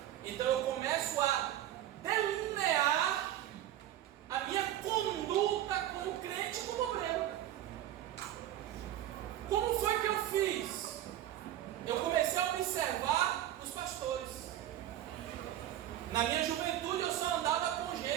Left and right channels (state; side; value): quieter; left; 12.6 dB